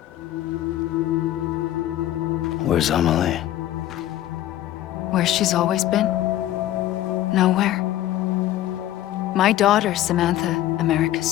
Where's Amelie? Where she's always been. Nowhere. My daughter, Samantha America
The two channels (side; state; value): right; quieter; 13.5 dB